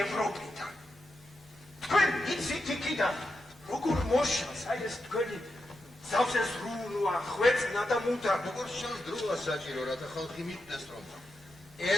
ევროპიდან. თქვენ იცით იქიდან, როგორ მოშალს აი ეს თქვენი ზავზე ზრუნვა, ხვეწნა და მუდა. როგორ შანს დროა საჭირო, რათა ხალხი მიხვდეს, რომ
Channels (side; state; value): both; normal; correlation 0.87